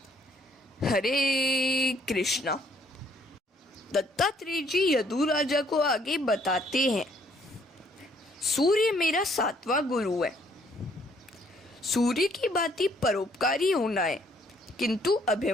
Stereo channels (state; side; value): normal; both; correlation 0.65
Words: हरे कृष्णा। दत्तात्रेय जी यदु राजा को आगे बताते हैं, सूर्य मेरा सातवां गुरु है। सूर्य की भांति परोपकारी होना है, किंतु